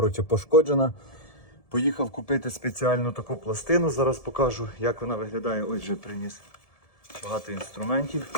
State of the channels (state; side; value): late; right; 1.7 ms